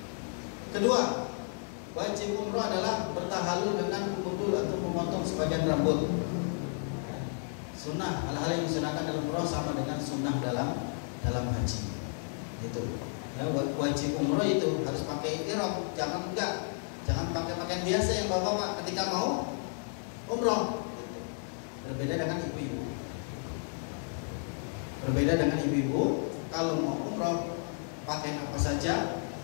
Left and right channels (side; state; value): right; silent; 56 dB below the other